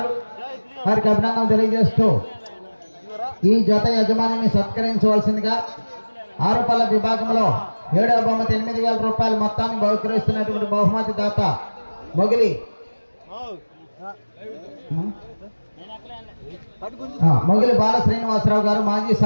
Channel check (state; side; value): inverted; both; correlation -1.00